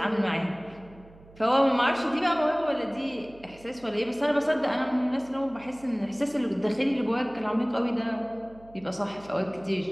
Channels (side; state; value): right; noise; hum, 23 dB below the sound